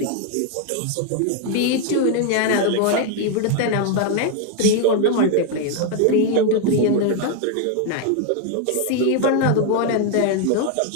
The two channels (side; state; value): both; different; correlation 0.00